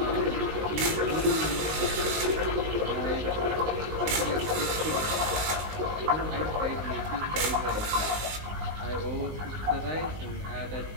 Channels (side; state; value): left; late; 19 ms